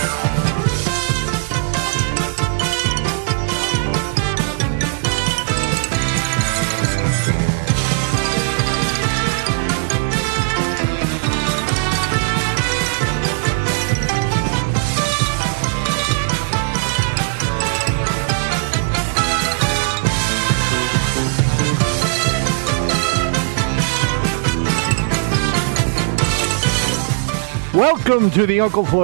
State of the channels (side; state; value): left; silent; digital silence